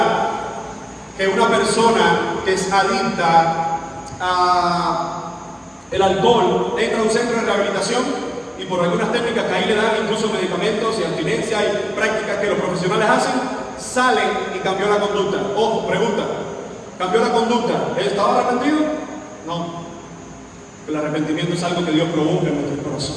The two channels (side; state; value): both; identical; correlation 1.00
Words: que una persona que es adicta a el alcohol entra a un centro de rehabilitación y por algunas técnicas que ahí le dan, incluso medicamentos y abstinencia y prácticas que los profesionales hacen, salen y cambió la conducta. Ojo, pregunta: ¿cambió la conducta? ¿Él estaba arrepentido? No. El arrepentimiento es algo que Dios provoca en nuestros